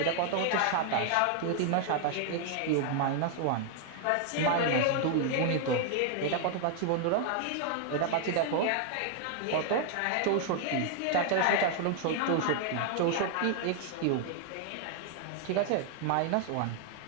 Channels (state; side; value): different; both; correlation 0.00